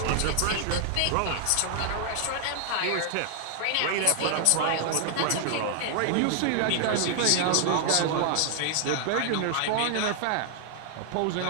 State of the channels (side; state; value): both; different; correlation 0.00